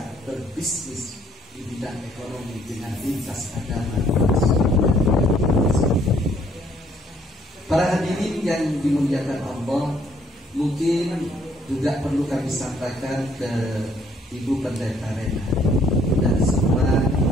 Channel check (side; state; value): both; normal; correlation 0.64